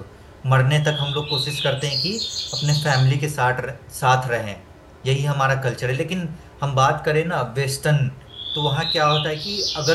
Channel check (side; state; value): both; identical; correlation 1.00